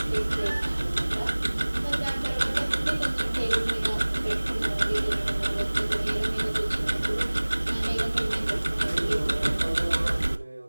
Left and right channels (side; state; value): both; inverted; correlation -1.00